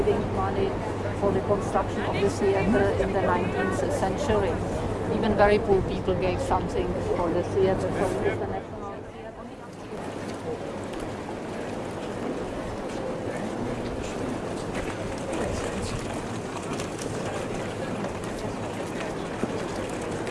money for the construction of the theatre in the 19th century. Even very poor people gave something for the theatre. So it is the National Theatre.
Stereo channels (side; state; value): both; identical; correlation 1.00